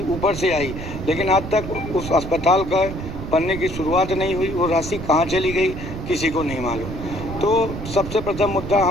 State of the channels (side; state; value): right; noise; rumble, 8 dB below the sound